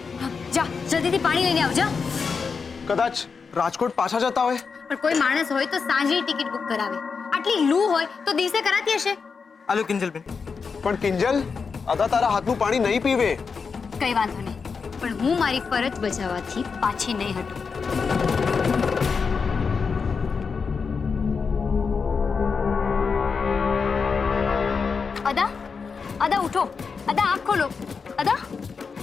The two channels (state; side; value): quieter; right; 5.4 dB